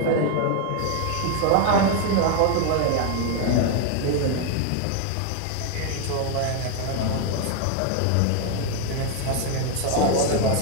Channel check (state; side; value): different; both; correlation 0.01